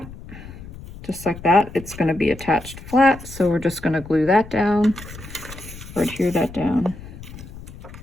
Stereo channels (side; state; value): left; noise; rumble, 15 dB below the sound